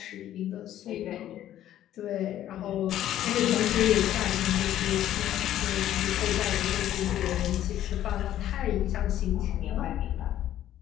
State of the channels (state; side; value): quieter; right; 12.2 dB